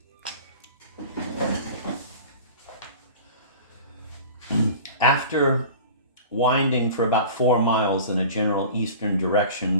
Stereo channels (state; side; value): inverted; both; correlation -0.39